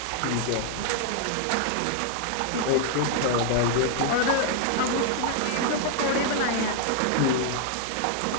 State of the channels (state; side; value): different; both; correlation 0.00